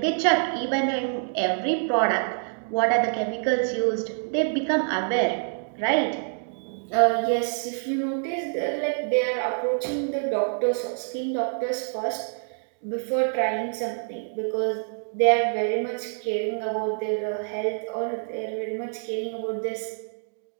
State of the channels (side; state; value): left; silent; digital silence